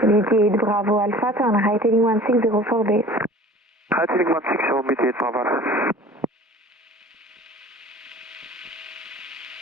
BT8 Bravo Alpha, turn right heading 1604 base. Right heading 160, BT8 Bravo.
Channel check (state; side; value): normal; both; correlation 0.44